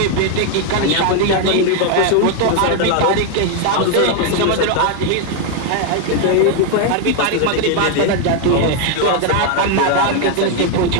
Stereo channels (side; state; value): both; different; correlation 0.01